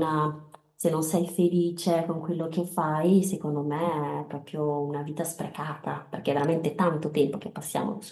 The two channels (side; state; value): both; identical; correlation 1.00